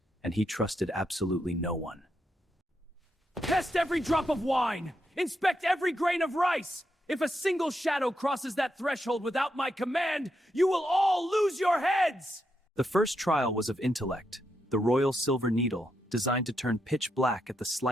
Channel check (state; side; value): normal; both; correlation 0.82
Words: and he trusted absolutely no one. Test every drop of wine! Inspect every grain of rice! If a single shadow crosses that threshold without my command, you will all lose your heads! The first trial was of intellect, the royal silver needle, designed to turn pitch black at the